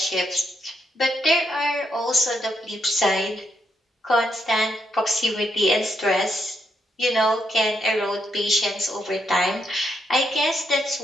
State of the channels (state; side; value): normal; both; correlation 0.78